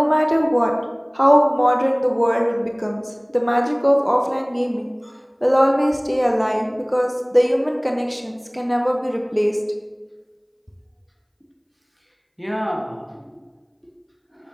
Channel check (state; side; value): identical; both; correlation 1.00